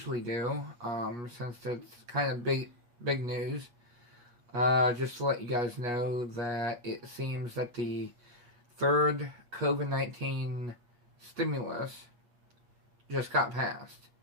do, since it's kind of big news. Just to let you guys know that it seems that the third COVID-19 stimulus just got passed.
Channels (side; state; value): left; late; 8.5 ms